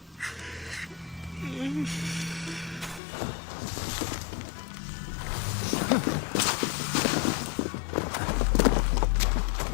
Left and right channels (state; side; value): drops out; right; at 3.0 s